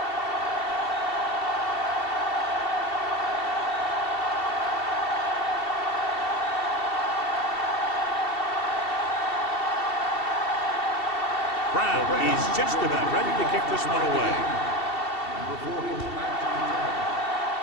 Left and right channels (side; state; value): right; late; 2.7 ms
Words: Brown is just about ready to kick this one away.